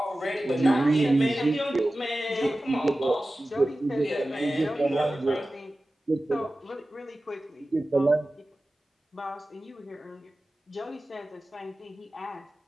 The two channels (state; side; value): normal; both; correlation 0.95